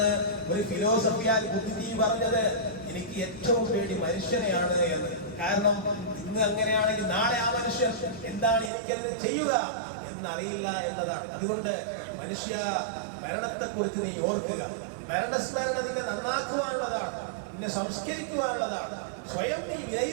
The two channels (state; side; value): drops out; left; at 8.7 s